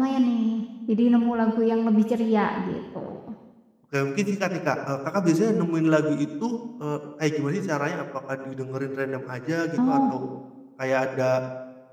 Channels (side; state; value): both; identical; correlation 1.00